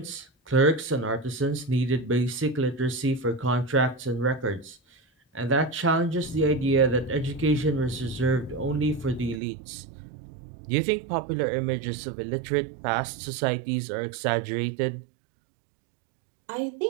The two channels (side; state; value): left; drops out; at 9.4 s